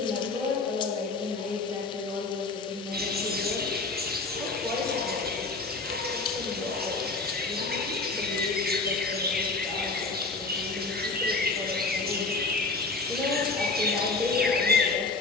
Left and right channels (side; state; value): right; quieter; 3.8 dB